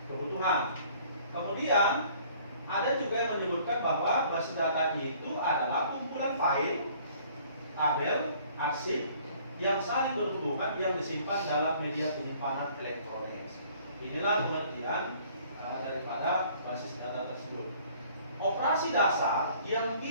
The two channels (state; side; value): inverted; both; correlation -0.56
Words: kebutuhan. Kemudian ada juga yang menyebutkan bahwa basis data itu adalah kumpulan file, tabel, arsip yang saling berhubungan yang disimpan dalam media penyimpanan elektronik. Inilah pengertian daripada basis data tersebut. Operasi dasar yang